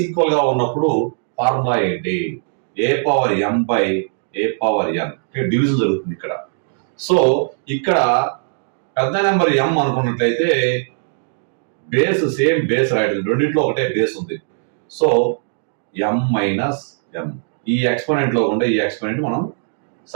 ఈక్వల్ గా ఉన్నప్పుడు ఫార్ములా ఏంటి? A power m by a power n division జరుగుతుంది ఇక్కడ. సో ఇక్కడ పెద్ద నెంబర్ ఎం అనుకున్నట్లయితే బేస్ సేమ్ బేస్ రాయడం, రెండింటిలో ఒకటే బేస్ ఉంది. సో ఎం మైనస్ ఎం, ఈ ఎక్స్పోనెంట్ లో ఉండే ఈ ఎక్స్పోనెంట్ మనం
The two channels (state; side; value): silent; left; 66 dB below the other